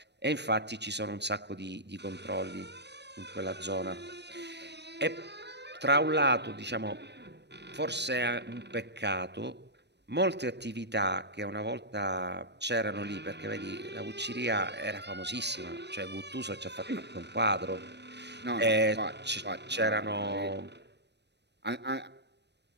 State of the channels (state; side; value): late; left; 0.50 ms